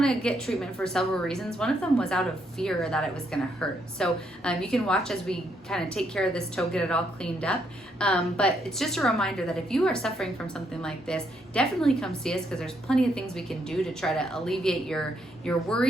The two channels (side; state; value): both; normal; correlation 0.74